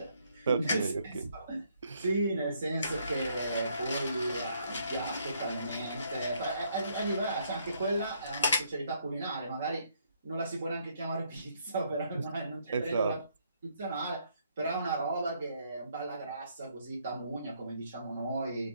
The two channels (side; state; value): both; inverted; correlation -0.70